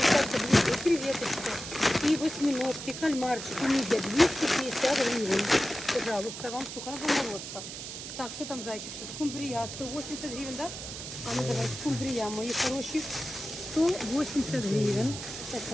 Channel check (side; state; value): right; noise; hiss, 9 dB below the sound